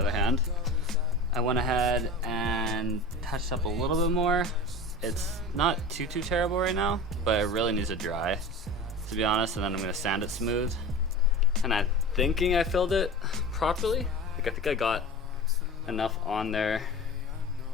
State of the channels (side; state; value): both; normal; correlation 0.33